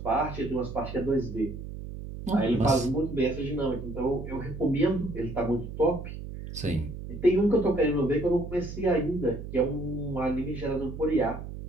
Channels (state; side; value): noise; right; hum, 9 dB below the sound